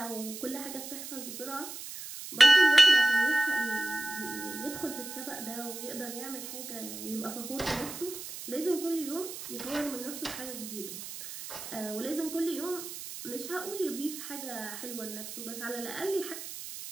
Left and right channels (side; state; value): right; noise; hiss, 10 dB below the sound